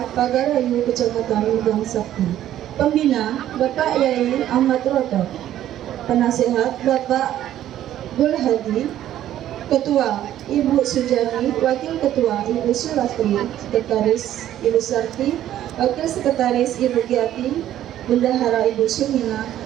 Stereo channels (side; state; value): left; quieter; 12.2 dB